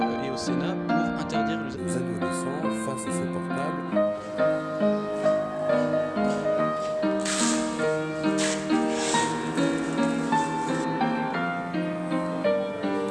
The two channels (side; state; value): both; identical; correlation 1.00